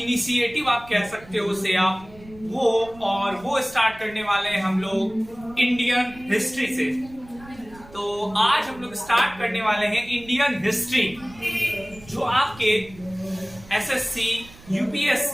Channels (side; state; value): right; noise; rumble, 21 dB below the sound